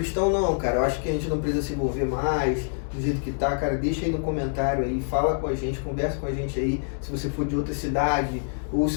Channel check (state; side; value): silent; right; digital silence